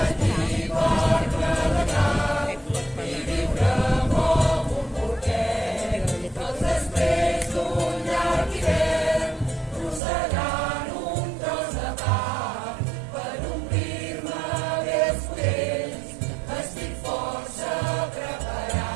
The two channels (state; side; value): drops out; left; at 10.0 s